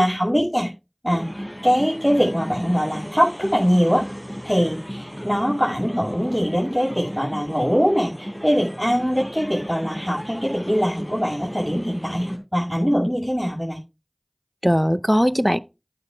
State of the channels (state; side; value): identical; both; correlation 1.00